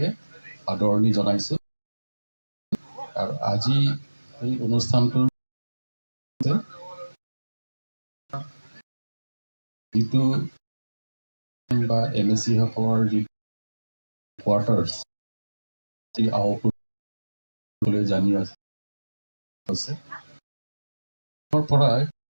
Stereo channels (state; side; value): inverted; both; correlation -1.00